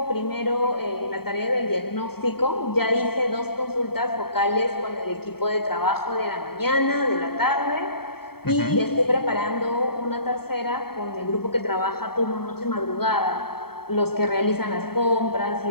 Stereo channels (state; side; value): late; right; 0.95 ms